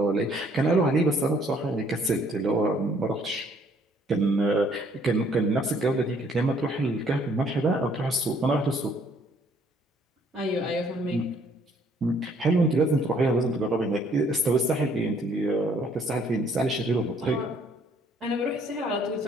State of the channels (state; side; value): normal; both; correlation 0.63